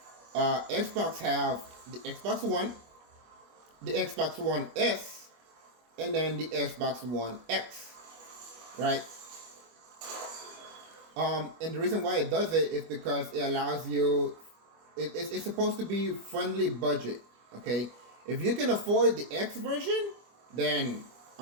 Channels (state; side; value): late; left; 25 ms